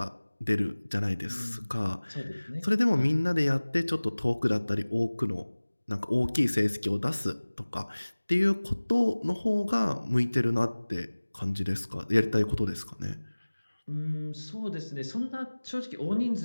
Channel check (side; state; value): both; inverted; correlation -1.00